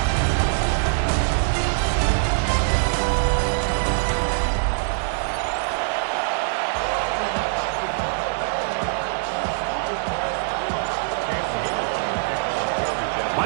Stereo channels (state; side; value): silent; left; digital silence